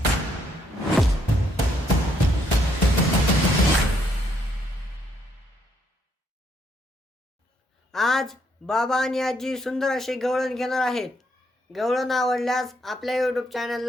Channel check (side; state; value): both; normal; correlation 0.73